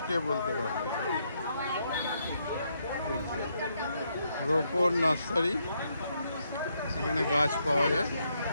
কে বলতে পারবে। রোপর নার্সারি, এখানে গাছ পাওয়া যায়।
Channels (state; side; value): inverted; both; correlation -0.76